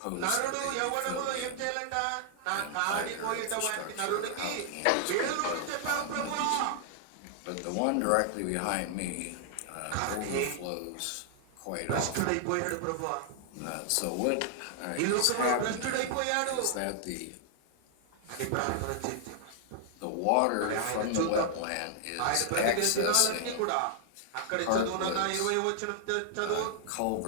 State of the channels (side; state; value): both; different; correlation -0.01